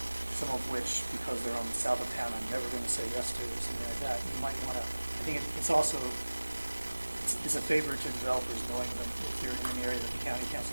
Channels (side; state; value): both; inverted; correlation -1.00